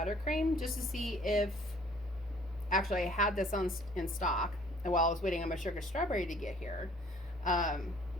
just to see if, actually I had this in stock while I was waiting on my sugar strawberry to get here.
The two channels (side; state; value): both; normal; correlation 0.56